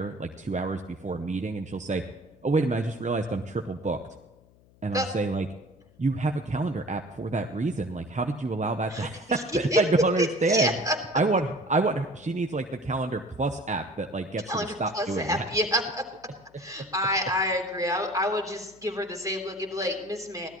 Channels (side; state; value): left; noise; hum, 28 dB below the sound